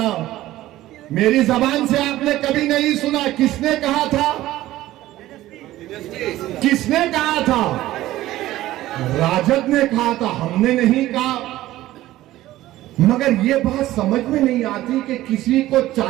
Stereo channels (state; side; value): quieter; left; 15.5 dB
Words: मेरी जबान से आपने कभी नहीं सुना। किसने कहा था? किसने कहा था? राजद ने कहा था, हमने नहीं कहा। मगर ये बात समझ में नहीं आती कि किसी को